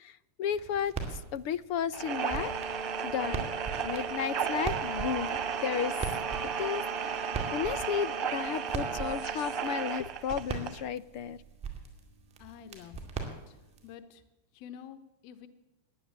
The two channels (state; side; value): late; right; 6.9 ms